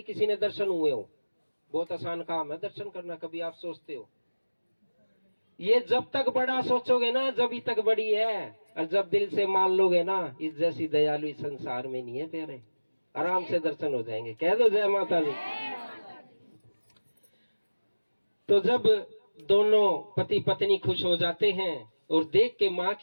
किसी ने दर्शन हुए हो। बहुत आसान काम है दर्शन करना, कभी आप सोचते हो? ये जब तक बड़ा सोचोगे ना जब तक बड़ी है, और जब दिल से मान लोगे ना, इस जैसी दयालु इस संसार में नहीं है प्यारे। आराम से दर्शन हो जाएंगे। कह दो जय माता दी। तो जब दोनों पति पत्नी खुश हो जाते हैं और देख के माँ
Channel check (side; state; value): both; inverted; correlation -1.00